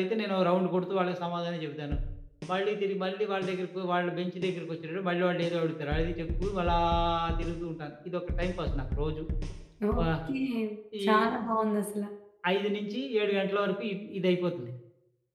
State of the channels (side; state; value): both; identical; correlation 1.00